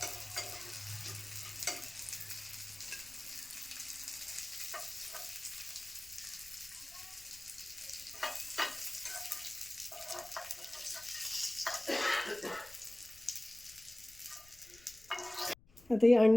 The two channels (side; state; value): left; noise; rumble, 24 dB below the sound